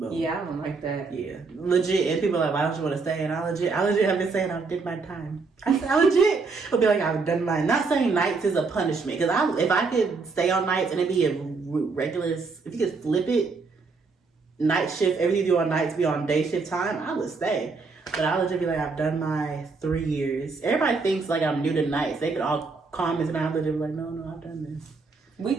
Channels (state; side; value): quieter; left; 4.3 dB